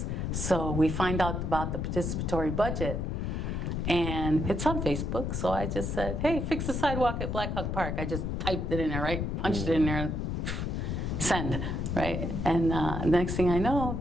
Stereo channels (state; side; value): noise; left; rumble, 1 dB below the sound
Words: So we find out about the participatory budget, and it's on Facebook. So I just said, hey, fix the sidewalk at Black Hawk Park. I just typed it in there, right? Punched it in there, send, right? And next thing I know,